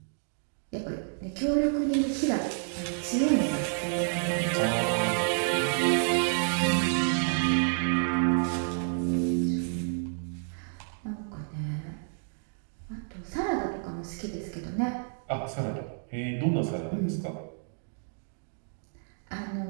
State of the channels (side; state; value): left; silent; 58 dB below the other